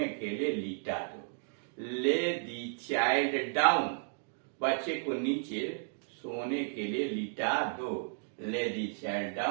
के लिए लिटा दो। ले दी चाइल्ड डाउन, बच्चे को नीचे सोने के लिए लिटा दो। Lay the child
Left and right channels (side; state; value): left; silent; digital silence